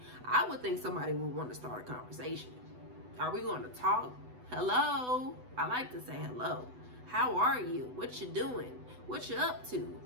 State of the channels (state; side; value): late; left; 8.0 ms